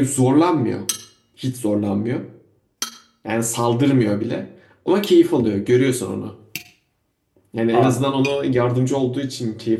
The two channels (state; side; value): identical; both; correlation 1.00